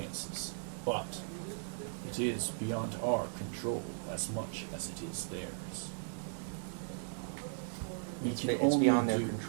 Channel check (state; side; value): silent; left; digital silence